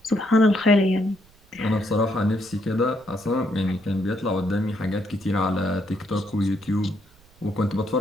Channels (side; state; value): right; noise; rumble, 28 dB below the sound